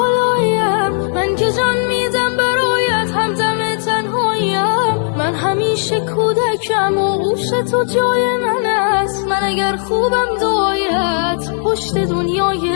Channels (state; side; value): silent; right; 69 dB below the other